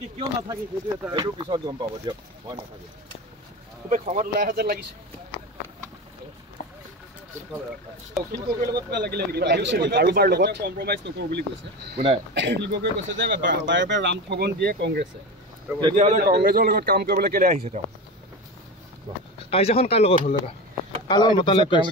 কিয় নাথাকে সেইটো পিছত গম পাব দিয়ক মই নাথাকো খুবেই খঙত ওলাই অহা যেন লাগিছে কাৰোবাৰ লগত কম্প্ৰমাইজ নকৰো বুলি কৈছে কোনে কৈছে যে বাৰে বাৰে ৰাম ঠগন দিয়ে কংগ্ৰেছে তেতিয়াহ'লে কংগ্ৰেছৰ লগত কাম কৰিবলৈ কেলে আহিছে তেওঁ কাজিয়াখন কাৰ লগত হ'ল দাদা কাৰ লগত মতালে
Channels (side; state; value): both; normal; correlation 0.25